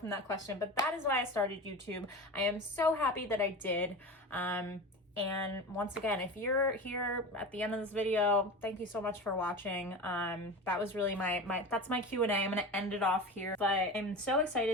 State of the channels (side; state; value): both; normal; correlation 0.29